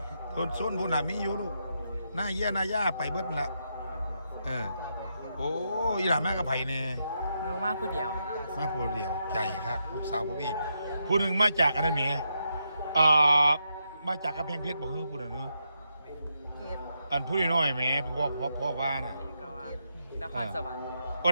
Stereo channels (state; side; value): inverted; both; correlation -0.82